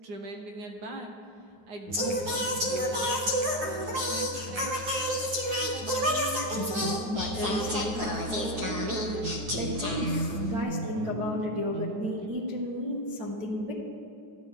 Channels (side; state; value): left; late; 9.5 ms